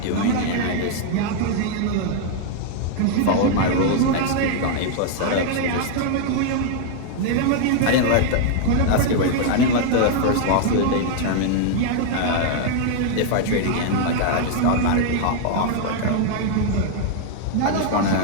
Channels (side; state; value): both; different; correlation 0.00